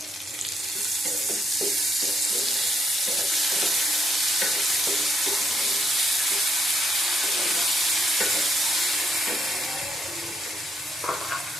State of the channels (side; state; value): both; normal; correlation 0.74